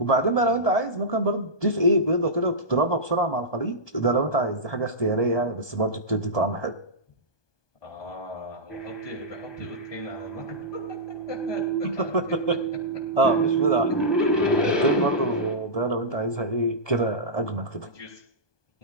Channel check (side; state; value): right; late; 1.2 ms